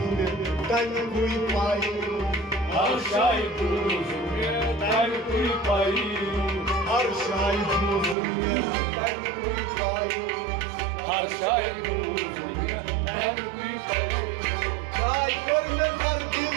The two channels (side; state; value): left; drops out; at 8.2 s